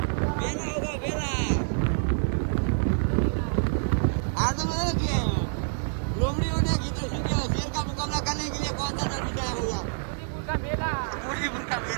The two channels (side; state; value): left; silent; digital silence